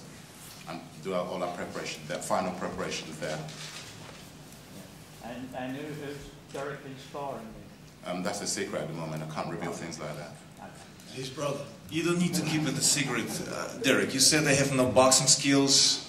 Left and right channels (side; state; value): both; identical; correlation 1.00